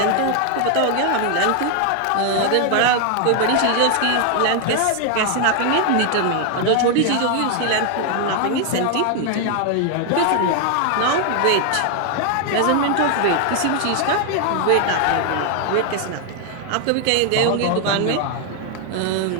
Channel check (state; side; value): different; both; correlation 0.00